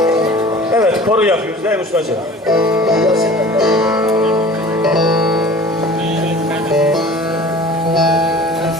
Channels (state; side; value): normal; both; correlation 0.43